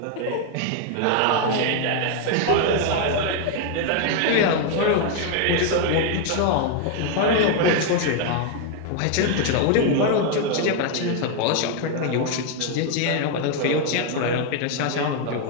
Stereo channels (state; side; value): different; both; correlation 0.01